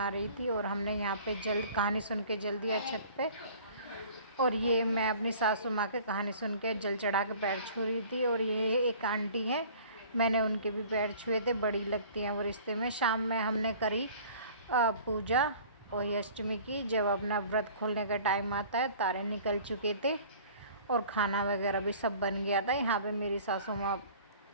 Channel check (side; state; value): both; inverted; correlation -0.48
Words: रही थी और हमने यहाँ पे जल्द कहानी सुन के जल दिया छत पे। और ये मैं अपनी सासू माँ के कहानी सुन के जल चढ़ा के पैर छू रही थी। और ये एक आंटी है, मैंने उनके भी पैर छुए थे, बड़ी लगती हैं वो रिश्ते में। शाम में हमने करी पूजा अहोई अष्टमी की। जब अपना व्रत खोलने का टाइम आता है, तारे निकल चुके थे और खाना वगैरह भी सब बन गया था। यहाँ पे मेरी सासू माँ